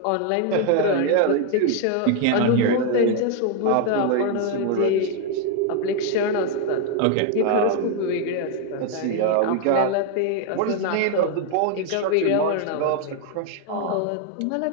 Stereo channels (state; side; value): different; both; correlation 0.01